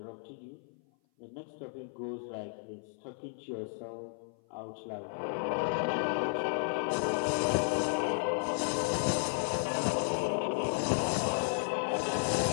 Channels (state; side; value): silent; right; 55 dB below the other